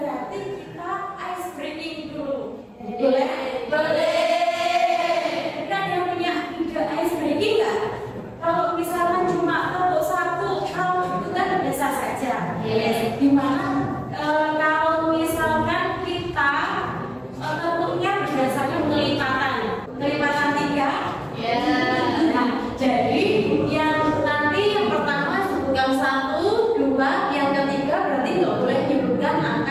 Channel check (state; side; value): identical; both; correlation 1.00